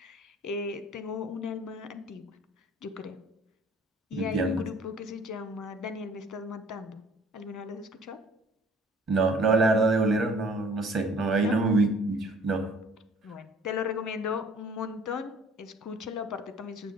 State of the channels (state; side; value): normal; both; correlation 0.54